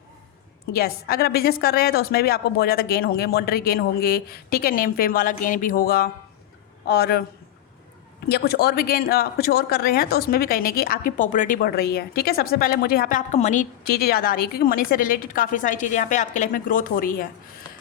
यस। अगर आप बिज़नेस कर रहे हैं तो उसमें भी आपको बहुत ज़्यादा गेन होंगे, मॉनेटरी गेन होंगे। ठीक है, नेम फेम वाला गेन भी होगा, और या कुछ और भी गेन कुछ और कर रहे हैं तो उसमें भी कहने की आपकी पॉपुलरिटी बढ़ रही है। ठीक है, सबसे पहले मुझे यहाँ पे आपका मनी चीज़ें ज़्यादा आ रही है, क्योंकि मनी से रिलेटेड काफ़ी सारी चीज़ें यहाँ पे आपके लाइफ में ग्रोथ हो रही है।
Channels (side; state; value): right; quieter; 12.1 dB